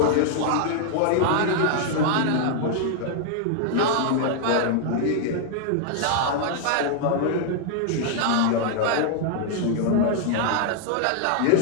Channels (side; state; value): both; different; correlation 0.00